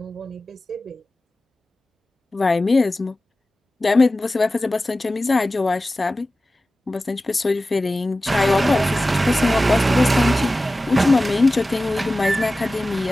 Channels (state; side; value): normal; both; correlation 0.95